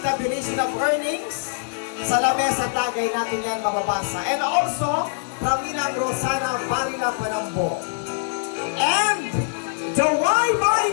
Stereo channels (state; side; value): silent; right; digital silence